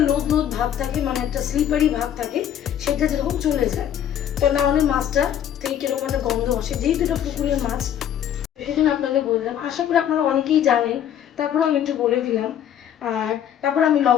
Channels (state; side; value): quieter; right; 10.0 dB